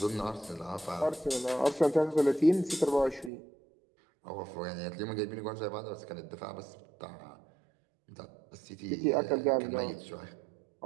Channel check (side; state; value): left; drops out; at 3.3 s